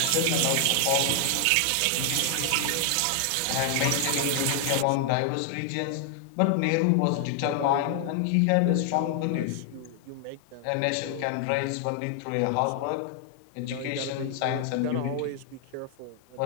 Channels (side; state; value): both; different; correlation 0.00